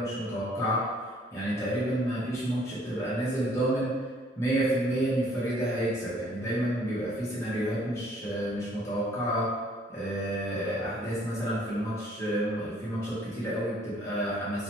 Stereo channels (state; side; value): normal; both; correlation 0.60